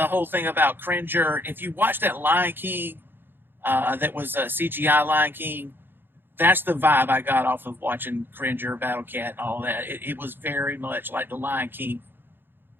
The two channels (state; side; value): late; left; 0.10 ms